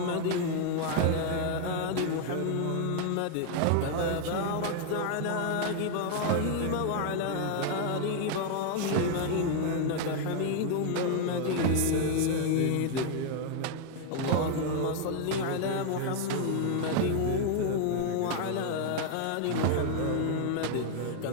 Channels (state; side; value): different; both; correlation 0.00